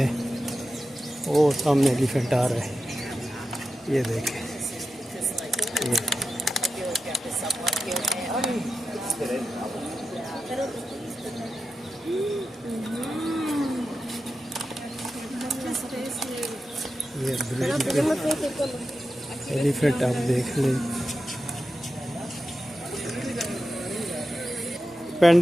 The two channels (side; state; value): both; normal; correlation 0.91